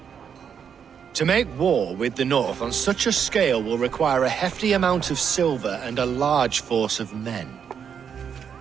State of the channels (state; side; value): quieter; left; 7.5 dB